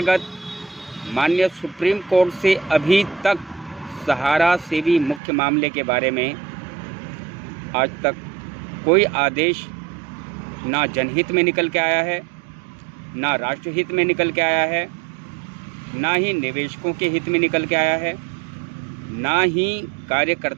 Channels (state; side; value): drops out; left; at 5.2 s